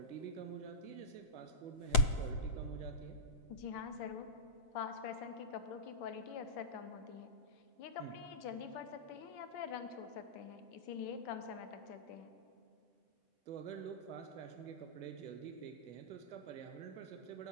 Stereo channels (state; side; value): late; right; 7.7 ms